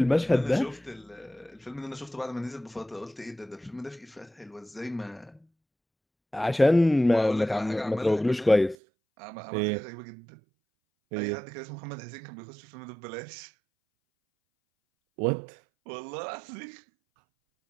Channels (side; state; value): left; drops out; at 8.8 s